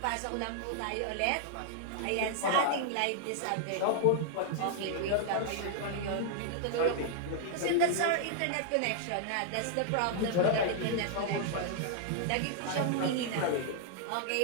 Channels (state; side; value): different; both; correlation -0.01